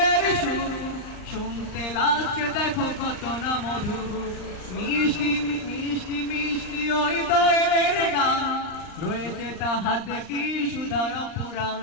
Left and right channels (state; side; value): late; right; 39 ms